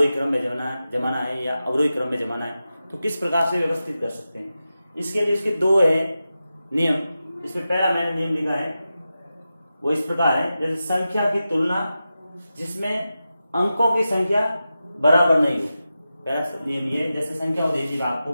क्रम में जमाना है या अवरोही क्रम में जमाना है, तो किस प्रकार से व्यवस्थित कर सकते हैं। इसके लिए इसके दो है नियम। इसमें पहला मैंने नियम लिखा है वो इस प्रकार है, जैसे संख्या की तुलना जिसमें अंकों की संख्या बराबर नहीं हो। पहला नियम ये, जैसे संख्या दे दीजिएगा आपको,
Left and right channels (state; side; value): inverted; both; correlation -0.92